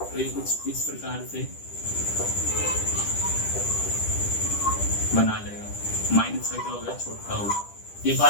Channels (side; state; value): right; late; 10 ms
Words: तो ये कुछ इस प्रकार से बना लेगा, माइनस का क्या होगा, छोटा होगा। ये